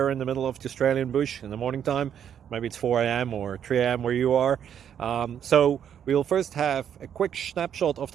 in the middle of the Australian bush in the morning time. Maybe it's 4 a.m. or 3 a.m. where you are. So we'll first have a quick snapshot of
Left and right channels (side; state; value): left; quieter; 9.0 dB